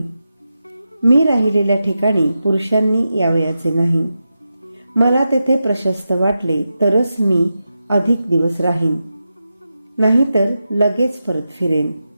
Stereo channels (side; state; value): both; inverted; correlation -0.90